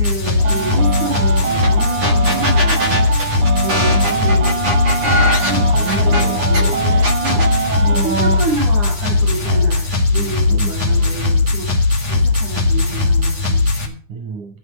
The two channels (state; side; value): late; left; 9.8 ms